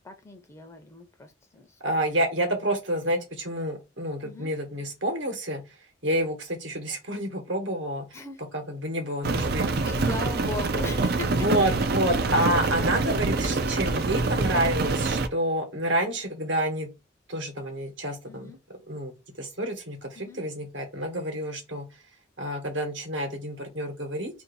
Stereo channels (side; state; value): both; normal; correlation 0.06